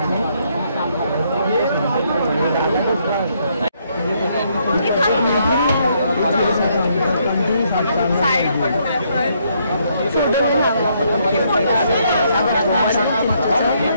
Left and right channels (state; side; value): inverted; both; correlation -0.72